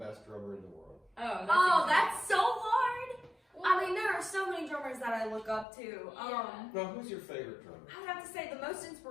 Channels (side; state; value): right; drops out; at 5.7 s